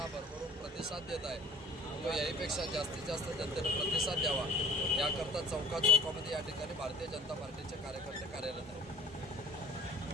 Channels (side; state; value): both; normal; correlation 0.48